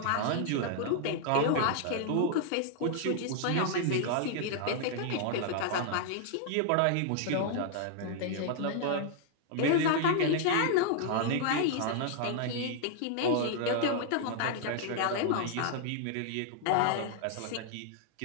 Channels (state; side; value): different; both; correlation -0.01